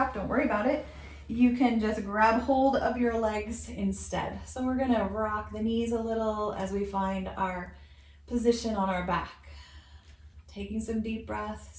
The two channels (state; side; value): identical; both; correlation 1.00